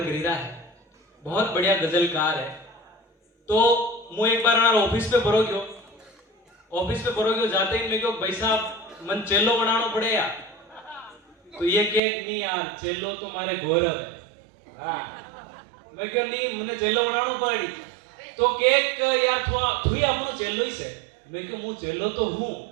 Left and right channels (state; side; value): drops out; left; at 12.0 s